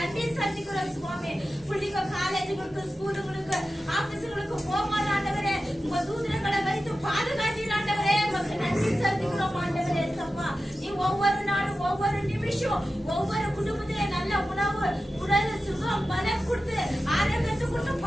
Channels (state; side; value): normal; both; correlation 0.93